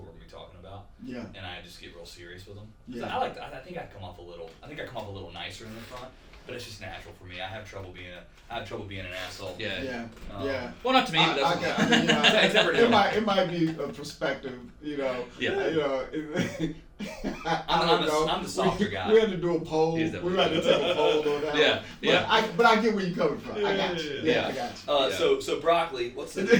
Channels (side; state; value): both; identical; correlation 1.00